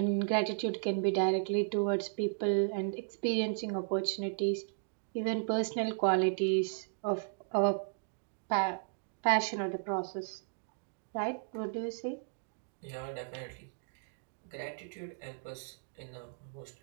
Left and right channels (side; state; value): left; silent; digital silence